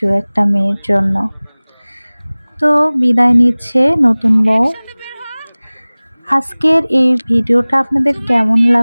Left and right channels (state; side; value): inverted; both; correlation -1.00